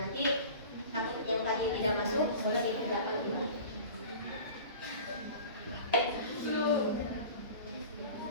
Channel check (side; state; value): both; inverted; correlation -0.39